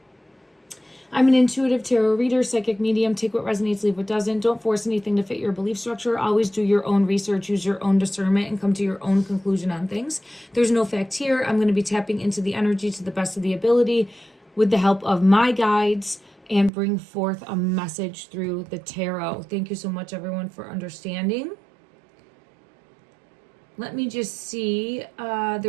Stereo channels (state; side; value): drops out; left; at 16.7 s